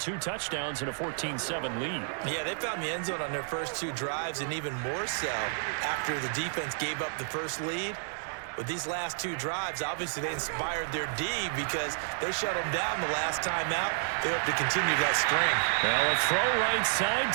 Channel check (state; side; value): silent; left; digital silence